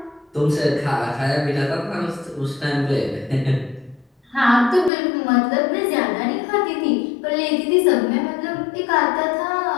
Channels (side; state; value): right; drops out; at 4.9 s